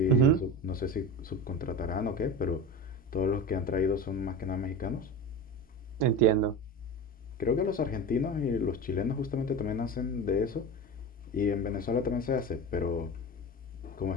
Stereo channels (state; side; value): normal; both; correlation 0.28